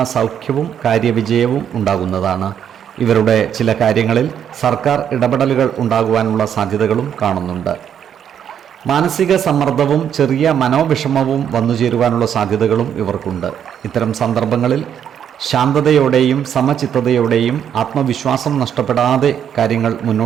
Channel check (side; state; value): left; quieter; 8.9 dB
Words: സൗഖ്യവും കാര്യവിജയവും ഉണ്ടാകുന്നതാണ്. ഇവരുടെ ചില കാര്യങ്ങളിൽ സർക്കാർ ഇടപെടലുകൾ ഉണ്ടാകുവാനുള്ള സാധ്യതകളും കാണുന്നുണ്ട്. മാനസിക സമ്മർദ്ദവും ചെറിയ മനോവിഷമവും വന്നുചേരുവാനുള്ള സാധ്യതകളും ഇവർക്കുണ്ട്. ഇത്തരം സന്ദർഭങ്ങളിൽ ശാന്തതയോടെയും സമചിത്തതയോടെയും ആത്മവിശ്വാസം നഷ്ടപ്പെടാതെ കാര്യങ്ങൾ